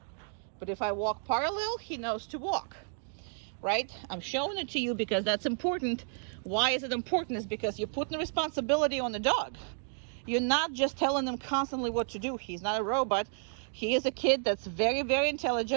But if I walk parallel, he knows to walk, right? I'm showing it to you because that's important. Why is it important? Is because you're putting the responsibility on the dog. You're not just telling him constantly what to do. He's not a robot. He is a kid that's very, very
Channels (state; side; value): silent; left; digital silence